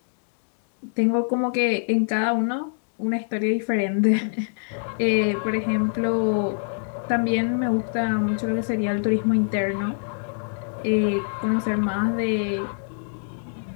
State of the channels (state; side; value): silent; right; digital silence